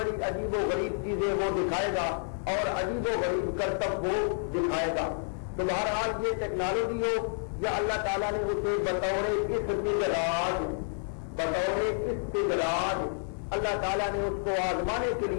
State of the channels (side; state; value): right; silent; 55 dB below the other